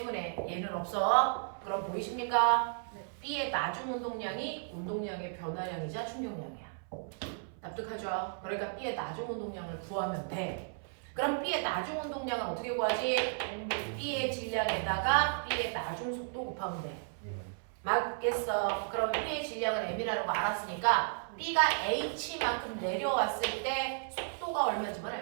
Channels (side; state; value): left; silent; 55 dB below the other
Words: 얘는 없어. 그럼 보이십니까? B의 나중 운동량이 운동량의 변화량이자 충격량이야. 납득하죠? 그러니까 B의 나중 운동량을 구하면 돼. 그럼 B의 나중 운동량은 어떻게 구하지? B의 질량에다가 B의 나중 속도 곱하면 돼. 맞겠어. 그럼 B의 질량은 M이라는 거 알았으니까 B가 H만큼 내려왔을 때 속도가 얼마인지만